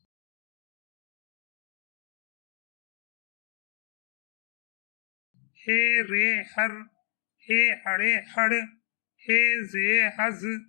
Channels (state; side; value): silent; right; 57 dB below the other